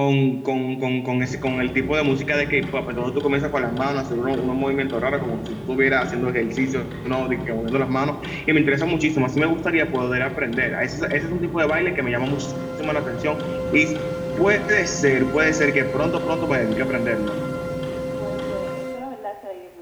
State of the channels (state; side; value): identical; both; correlation 1.00